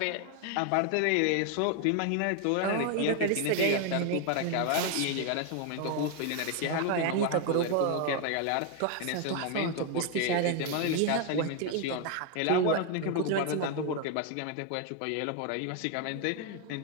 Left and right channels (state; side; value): different; both; correlation 0.01